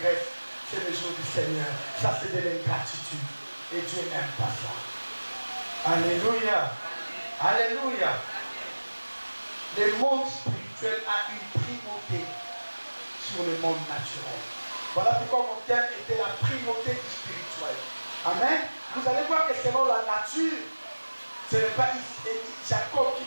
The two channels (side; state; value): both; inverted; correlation -1.00